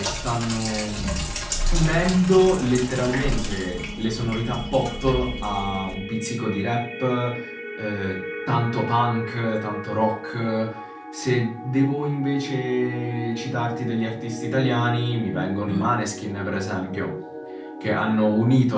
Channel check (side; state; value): both; identical; correlation 1.00